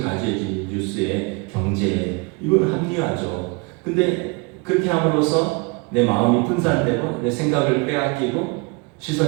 가져야지. 뉴스에, 경제에. 이건 합리화죠. 근데 그렇게 함으로써 내 마음이 분산되고 내 생각을 빼앗기고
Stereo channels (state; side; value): quieter; left; 29.1 dB